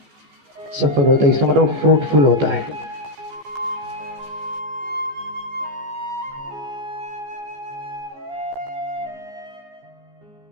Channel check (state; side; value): late; left; 15 ms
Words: सफल होता है। इसका मतलब फ्रूटफुल होता है।